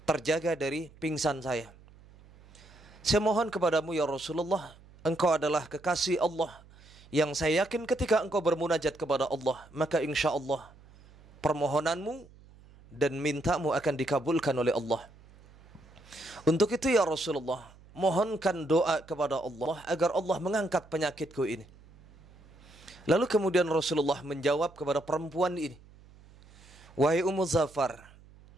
terjaga dari pingsan saya. Saya mohon kepadamu ya Rasulullah, engkau adalah kekasih Allah yang saya yakin ketika engkau bermunajat kepada Allah, maka insya Allah permohonanmu dan mintamu akan dikabulkan oleh Allah. Untuk itu ya Rasulullah, mohonkan doa kepada Allah agar Allah mengangkat penyakitku ini." Lalu kemudian Rasulullah menjawab kepada perempuan ini, "Wahai Ummu Zafar,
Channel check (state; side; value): noise; right; hum, 24 dB below the sound